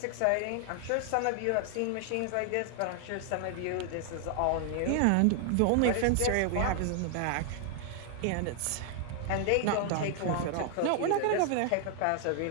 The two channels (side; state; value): both; different; correlation 0.00